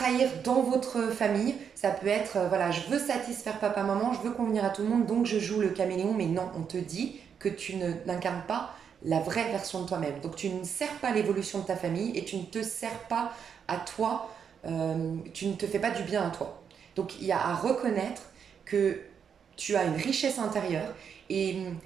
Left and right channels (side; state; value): left; quieter; 7.3 dB